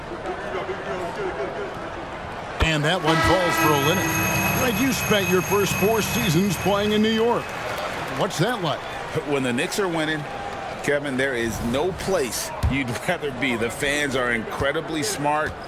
And that one falls for Olynyk. Greg, you spent your first 4 seasons playing in New York. What's that like? When the Knicks are winning, Kevin, there is no place you'd rather be. The fans are incredibly smart,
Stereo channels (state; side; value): identical; both; correlation 1.00